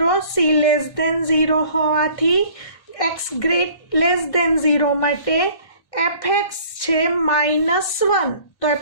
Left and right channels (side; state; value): right; late; 1.6 ms